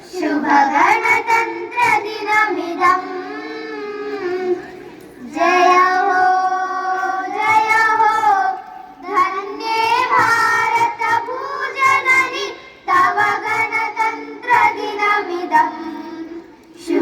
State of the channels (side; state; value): both; identical; correlation 1.00